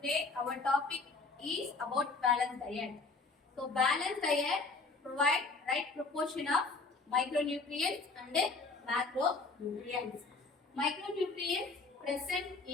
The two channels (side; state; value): right; quieter; 3.9 dB